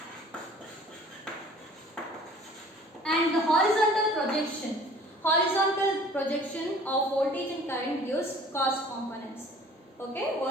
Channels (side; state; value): both; normal; correlation 0.50